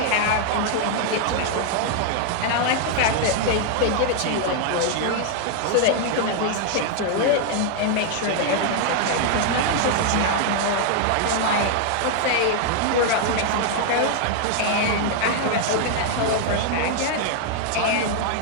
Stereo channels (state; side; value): different; both; correlation 0.00